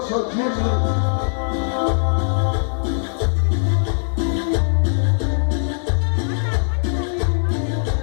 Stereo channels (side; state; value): right; silent; digital silence